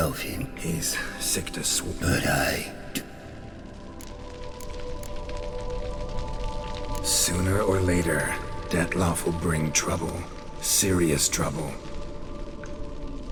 him. He's sick to swoop. But I... Sooner or later, Dettlaff will bring trouble. Serious trouble.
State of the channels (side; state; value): both; identical; correlation 1.00